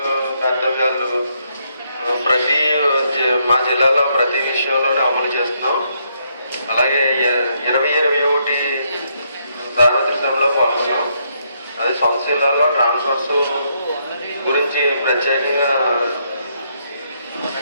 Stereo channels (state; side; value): inverted; both; correlation -0.75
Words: కర్తవ్యాలు మా జిల్లాలో ప్రతి విషయంలోనే అమలు చేస్తున్నాం. అలాగే 2021 సార్వత్రిక సభలో పాల్గొన్నాం. అదే సొంత జిల్లాలో ట్రాన్స్ఫర్స్ గురించి ప్రత్యేకంగా